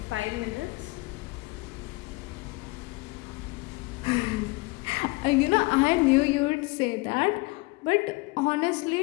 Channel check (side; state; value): right; quieter; 24.7 dB